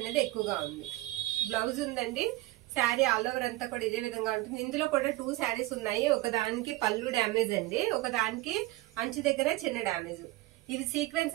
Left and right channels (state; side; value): quieter; left; 19.0 dB